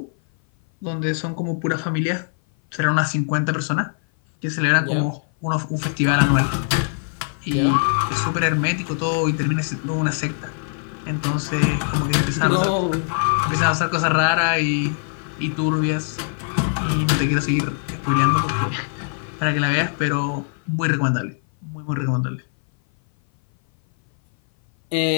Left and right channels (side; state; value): right; silent; 58 dB below the other